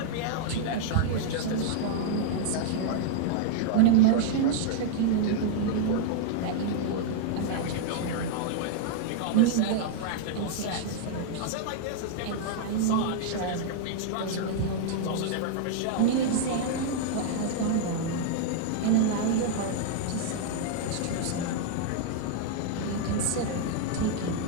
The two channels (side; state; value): both; different; correlation -0.01